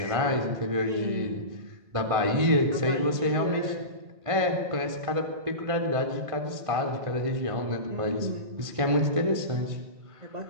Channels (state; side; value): late; left; 1.5 ms